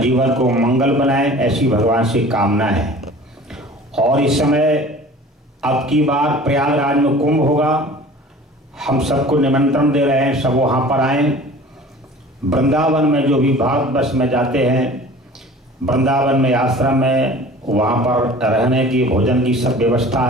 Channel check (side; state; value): both; normal; correlation 0.44